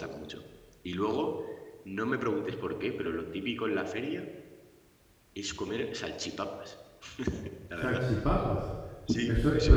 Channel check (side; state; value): both; identical; correlation 1.00